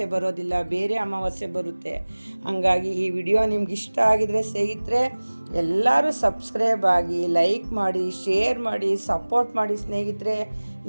ಬರೋದಿಲ್ಲ, ಬೇರೆ ಅಮಾವಾಸ್ಯೆ ಬರುತ್ತೆ. ಹಾಗಾಗಿ ಈ ವಿಡಿಯೋ ನಿಮ್ಗೆ ಇಷ್ಟ ಆಗಿದರೆ ಸ್ನೇಹಿತರೆ ಎಲ್ಲರೂ ಸಬ್ಸ್ಕ್ರೈಬ್ ಆಗಿ, ಲೈಕ್ ಮಾಡಿ, ಶೇರ್ ಮಾಡಿ, ಸಪೋರ್ಟ್ ಮಾಡಿ ಸ್ನೇಹಿತರೆ.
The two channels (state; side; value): inverted; both; correlation -1.00